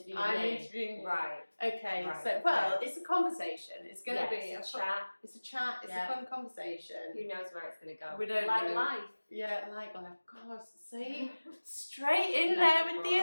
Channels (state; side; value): inverted; both; correlation -1.00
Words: I'm me. interviewing you. Right. Okay, right. so it's a conversation. It's going to be it's a chat. It's a chat. It's a fun conversation. Who knows where it's going to go? We don't like know. Life. Yeah, like life. God, see, straight in there with the